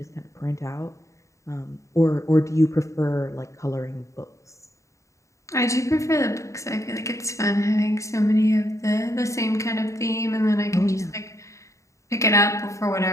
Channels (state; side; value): late; right; 0.15 ms